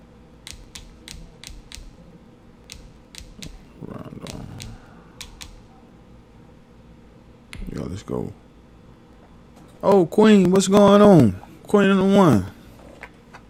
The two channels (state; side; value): identical; both; correlation 1.00